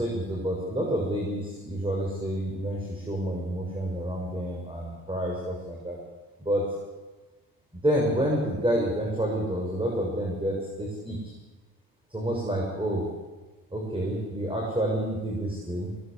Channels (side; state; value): both; normal; correlation 0.58